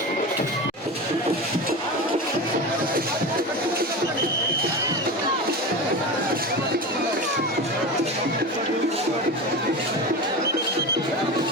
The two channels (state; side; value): normal; both; correlation 0.25